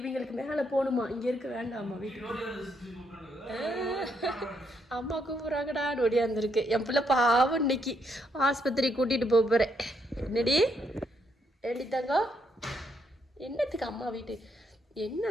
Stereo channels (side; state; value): both; normal; correlation 0.75